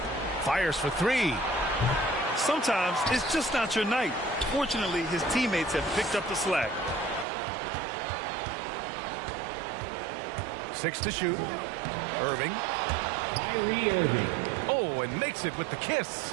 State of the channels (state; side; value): drops out; left; at 7.2 s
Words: Fires for 3. Sometimes it's just not your night. Fortunately, his teammates have picked up the slack. 6 to shoot. Irving. Kyrie Irving. Oh, and makes it with the kiss.